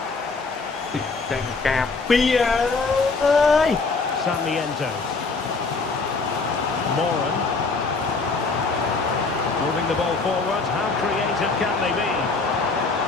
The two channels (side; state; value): right; quieter; 4.1 dB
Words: ចាញ់ការពីអើយ Sarmiento. Moran. Moving the ball forward. How creative can they be?